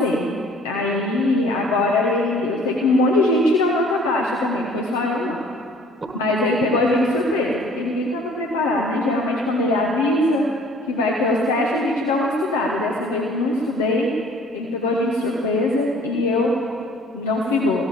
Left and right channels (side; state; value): both; normal; correlation 0.53